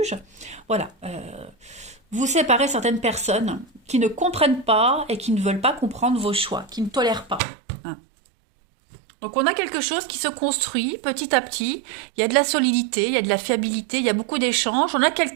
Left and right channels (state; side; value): drops out; left; at 7.4 s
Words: Voilà, vous séparez certaines personnes qui ne comprennent pas et qui ne veulent pas comprendre vos choix, qui ne tolèrent pas. Hein. Donc on a quelque chose qui se construit petit à petit, il y a de la solidité, il y a de la fiabilité, il y a beaucoup d'échanges, on a